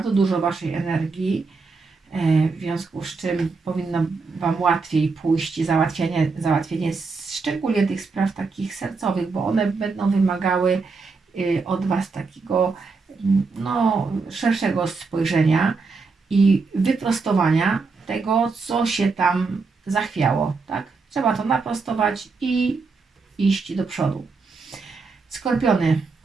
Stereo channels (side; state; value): left; quieter; 4.4 dB